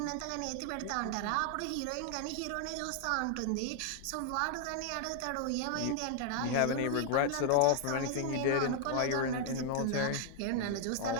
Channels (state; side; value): different; both; correlation 0.00